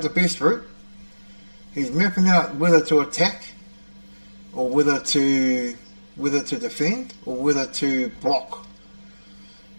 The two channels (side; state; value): both; inverted; correlation -1.00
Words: the best route. He's mapping out whether to attack, or whether to defend, or whether to block.